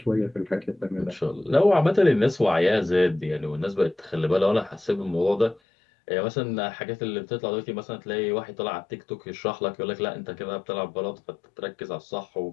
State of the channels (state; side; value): drops out; right; at 5.6 s